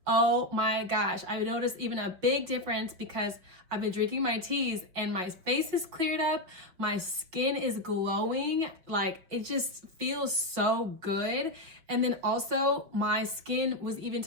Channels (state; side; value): late; left; 5.5 ms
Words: oh my gosh, I noticed even a big difference because I've been drinking my teas and my face is cleared up, my skin is glowing, like it just feels so good. And then also my skin was even